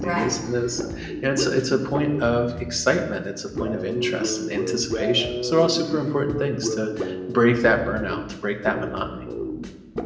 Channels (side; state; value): both; identical; correlation 1.00